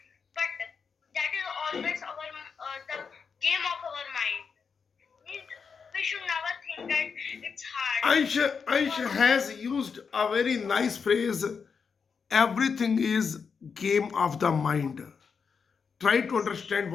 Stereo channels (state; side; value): quieter; right; 5.8 dB